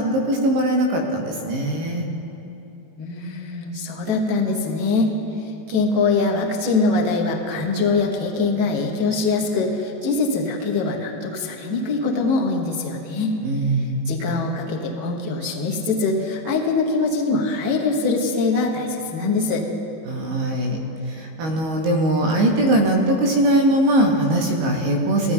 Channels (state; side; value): late; left; 18 ms